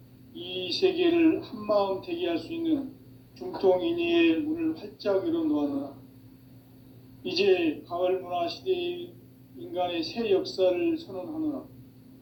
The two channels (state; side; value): identical; both; correlation 1.00